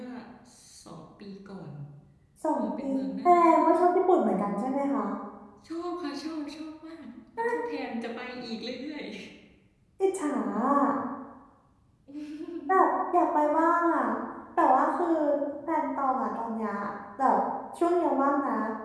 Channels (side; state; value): both; identical; correlation 1.00